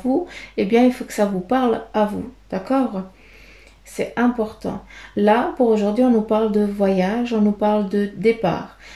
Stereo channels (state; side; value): identical; both; correlation 1.00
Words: eh bien, il faut que ça vous parle à vous, d'accord? C'est important. Là, pour aujourd'hui, on nous parle de voyage, on nous parle de départ.